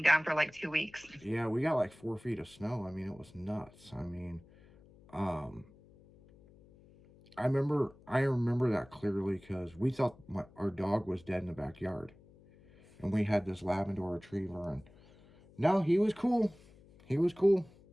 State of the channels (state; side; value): noise; left; hum, 25 dB below the sound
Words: down for like 2 weeks. yeah, we got like 4 feet of snow. I mean, it was nuts. I mean, um, I remember that clearly because we thought our dog was dead in the backyard, and we had this Labrador Retriever, and no, he was cool. He was cool.